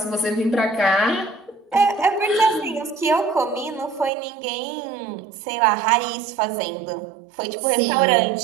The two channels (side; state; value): left; drops out; at 4.1 s